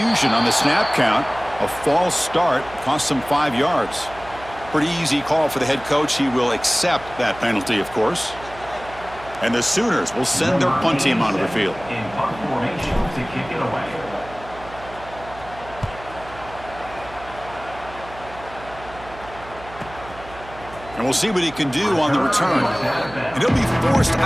on the snap count. A false start cost them 5 yards. Pretty easy call for the head coach. He will accept that penalty, of course. And the Sooners will send their punt team onto the field. In punt formation to kick it away. And we'll see what he can do on the return. And he'll be forced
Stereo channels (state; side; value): noise; right; hum, 17 dB below the sound